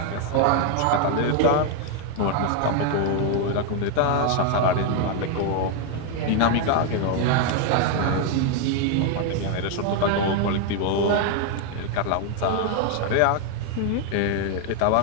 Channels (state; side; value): different; both; correlation 0.01